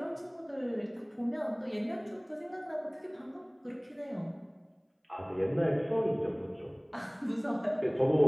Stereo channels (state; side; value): identical; both; correlation 1.00